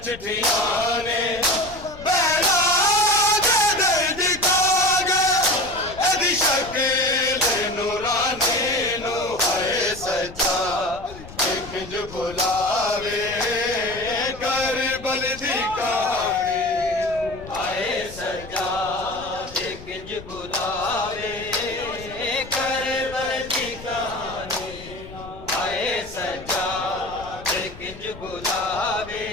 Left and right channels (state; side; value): noise; left; rumble, 16 dB below the sound